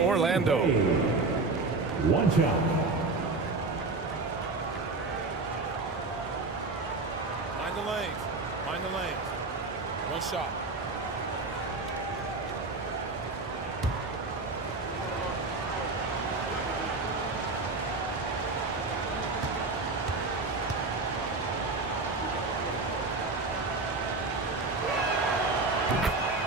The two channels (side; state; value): left; quieter; 3.6 dB